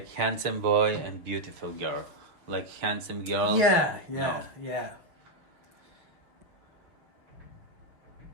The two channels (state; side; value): late; left; 6.1 ms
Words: handsome boy and beautiful girl. Like handsome girl. Yeah. No.